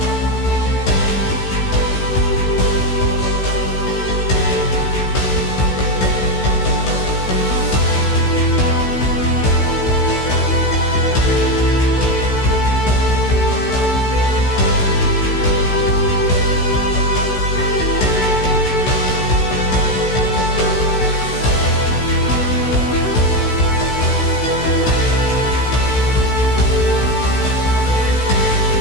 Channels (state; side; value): late; right; 16 ms